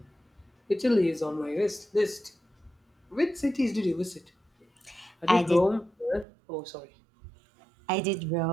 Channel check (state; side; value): drops out; left; at 6.2 s